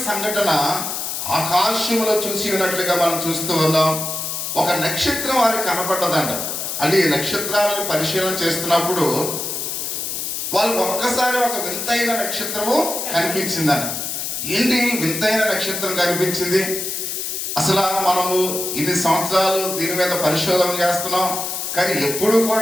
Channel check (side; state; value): left; noise; hiss, 4 dB below the sound